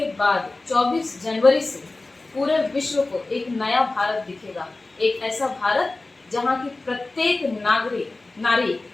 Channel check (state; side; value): quieter; right; 3.2 dB